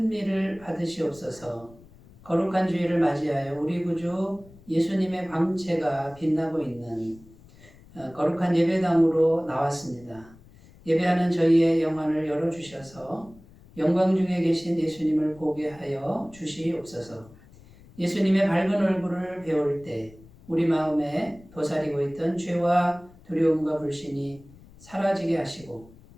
받으시옵소서. 거룩한 주일을 맞이하여 우리 구주 예수님의 광채가 빛나고 있는 거룩한 예배당으로 나왔습니다. 예배하는 저희의 영안을 열어주셔서 영광 중에 계신 예수님을 보게 하여 주시옵소서. 예수님의 밝은 얼굴을 배울 때 우리 마음에 도사리고 있던 죄와 두려움과 불신이 사라지게 하시고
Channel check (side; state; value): left; noise; rumble, 24 dB below the sound